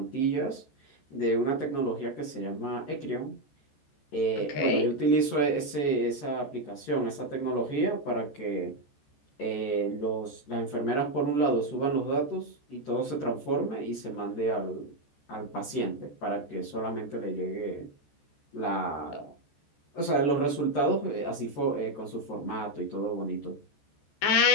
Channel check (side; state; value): right; late; 14 ms